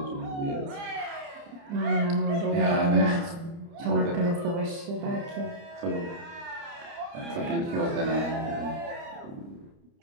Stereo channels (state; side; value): late; left; 29 ms